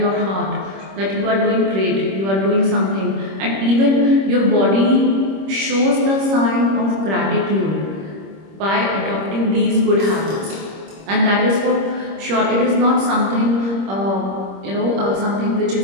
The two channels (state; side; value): late; left; 26 ms